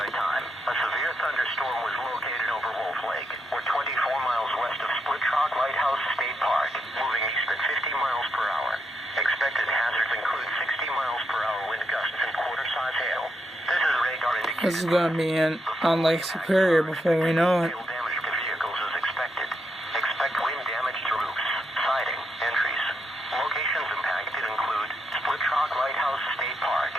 Time, a severe thunderstorm was located over Wolf Lake, or 24 miles west of Split Rock Lighthouse State Park, moving east at 50 miles per hour. Expected hazards include 60 miles per hour wind gusts and quarter-size hail. This is radar indicated. This is going to be on Lake Superior before we know it. Hail damage to vehicles is expected. Expect wind damage to roofs, siding, entries. Locations impacted include Split Rock Lighthouse State Park,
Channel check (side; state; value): both; normal; correlation 0.81